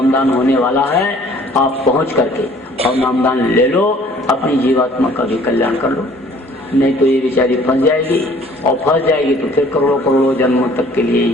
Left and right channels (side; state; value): both; normal; correlation 0.55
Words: होने वाला है, आप पहुंच करके और नामदान ले लो, अपनी जीवात्मा का भी कल्याण कर लो। नहीं तो ये बेचारी फंस जाएगी, और फंस जाएगी तो फिर करोड़ों करोड़ों जन्मों तक के लिए